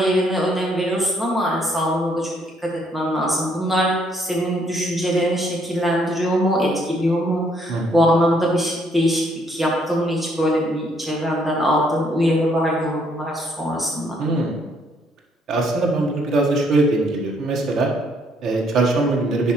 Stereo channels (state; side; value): normal; both; correlation 0.69